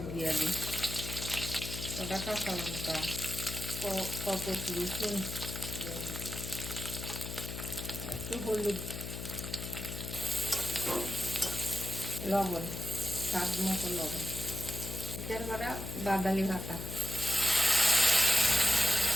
দিয়া দিই, কটা কাঁচা লঙ্কা, কত রসুন দিয়া দিতে, একটু হলুদ, লবণ, স্বাদ মতো লবণ, মিক্সচার করা বাদালি ভাতা,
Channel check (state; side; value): noise; left; hum, 7 dB below the sound